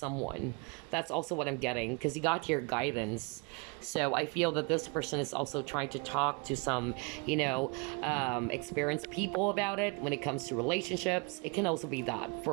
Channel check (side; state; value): left; quieter; 30.8 dB